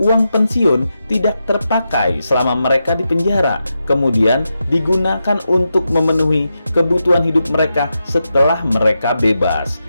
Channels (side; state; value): both; inverted; correlation -0.88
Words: pensiun tidak terpakai selama mereka di penjara, kemudian digunakan untuk memenuhi kebutuhan hidup mereka setelah mereka bebas.